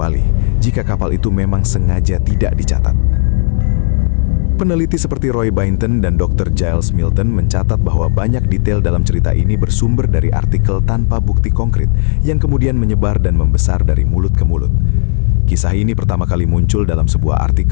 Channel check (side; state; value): right; silent; digital silence